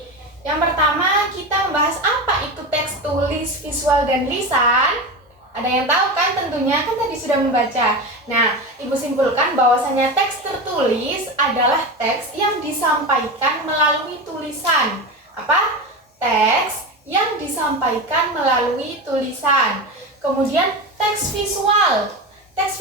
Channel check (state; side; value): normal; both; correlation 0.22